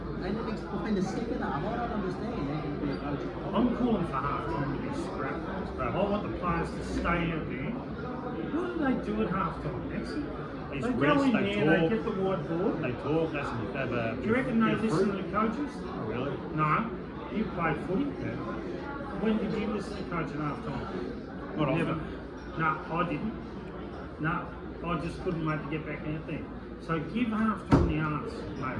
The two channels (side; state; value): both; identical; correlation 1.00